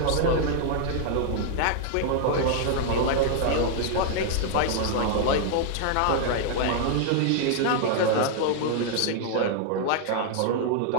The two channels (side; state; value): both; different; correlation 0.00